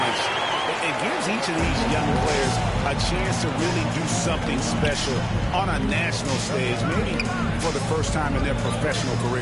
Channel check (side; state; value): both; identical; correlation 1.00